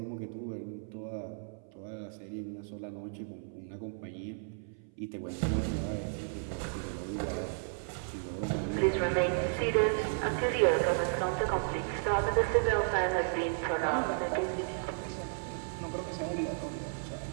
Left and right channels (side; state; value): left; silent; 55 dB below the other